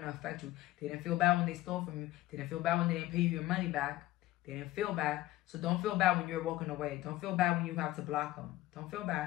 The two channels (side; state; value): right; quieter; 16.3 dB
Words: to affect you. They didn't feel bad when they stole from you. They didn't feel bad when they didn't pay you your money back. They didn't feel bad. So don't feel bad when you're walking away. Don't feel bad when you have to block them. Don't feel